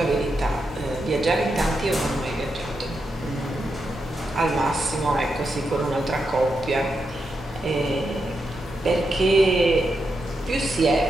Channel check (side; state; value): both; normal; correlation 0.85